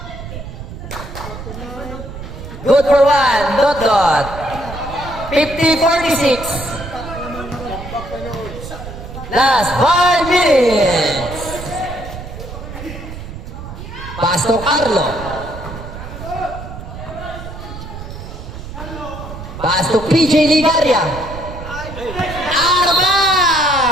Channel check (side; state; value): right; noise; rumble, 11 dB below the sound